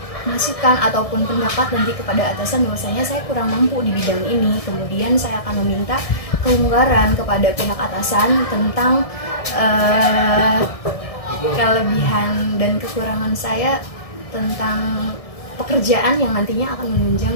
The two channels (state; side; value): late; right; 1.6 ms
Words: masukan ataupun pendapat nanti kepada atasan bahwasanya saya kurang mampu di bidang ini. Kemudian saya akan meminta kelonggaran kepada pihak atasan tentang kelebihan dan kekurangan saya tentang pekerjaan yang nantinya akan menunjang